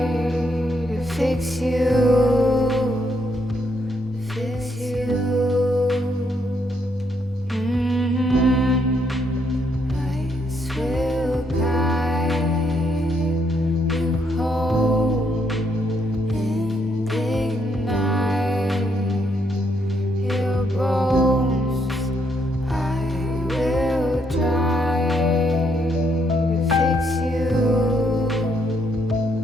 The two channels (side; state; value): both; normal; correlation 0.74